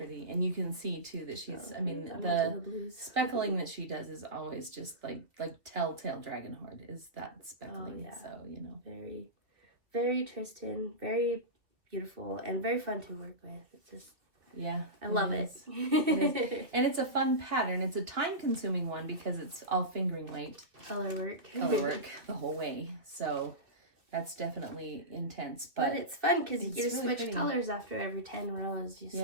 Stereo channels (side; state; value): left; late; 2.5 ms